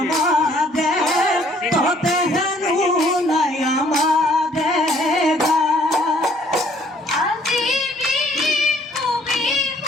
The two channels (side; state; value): both; normal; correlation 0.61